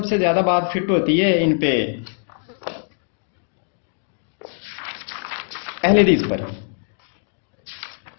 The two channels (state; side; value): silent; right; digital silence